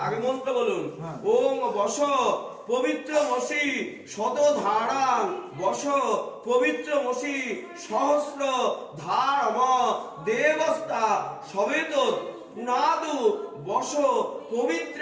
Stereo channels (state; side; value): identical; both; correlation 1.00